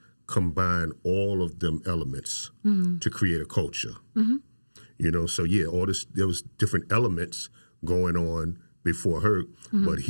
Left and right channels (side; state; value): both; inverted; correlation -1.00